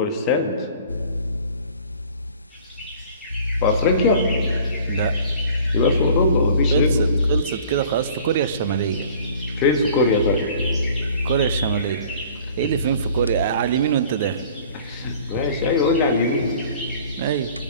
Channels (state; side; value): inverted; both; correlation -0.49